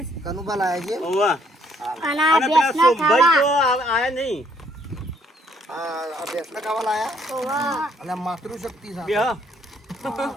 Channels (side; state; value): both; normal; correlation 0.67